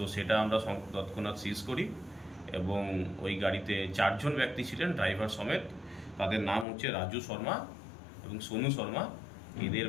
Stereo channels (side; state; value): right; drops out; at 6.7 s